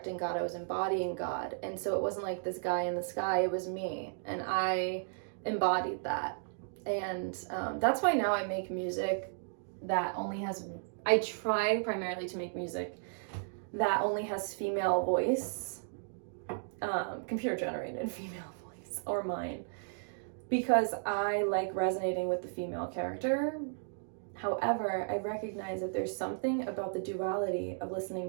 God, I was embodying God. And so it wasn't like this guy in the sky, it was me. And I embodied that. And that's why now I make music that only has, I try primarily to make music that only has female voice, computer generated female voice, or mine, because I like resonating with the female character. However, I recognize that there's something about the duality of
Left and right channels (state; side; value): silent; left; digital silence